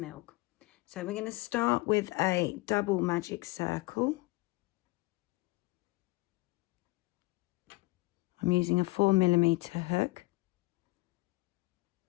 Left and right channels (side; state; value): right; quieter; 22.6 dB